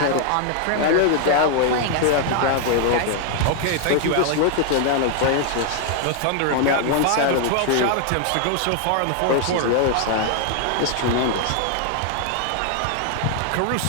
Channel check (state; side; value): different; both; correlation 0.00